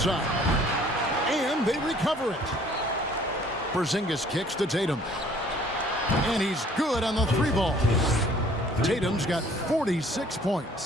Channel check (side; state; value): both; normal; correlation 0.56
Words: And they recover it. Porzingis kicks to Tatum. And he's good on the three ball. Tatum's got 46